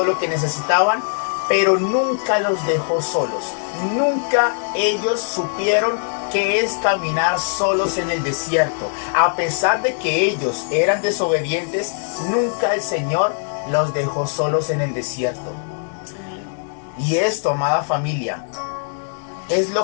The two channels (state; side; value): silent; right; digital silence